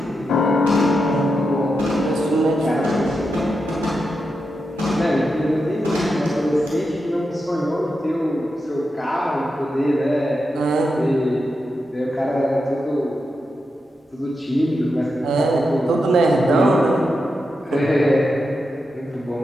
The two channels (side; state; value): both; normal; correlation 0.87